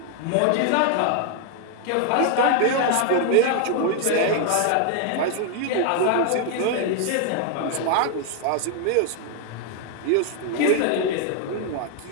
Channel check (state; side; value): different; both; correlation 0.00